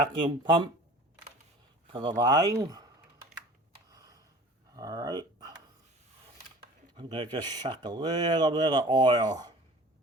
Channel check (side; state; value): both; normal; correlation 0.43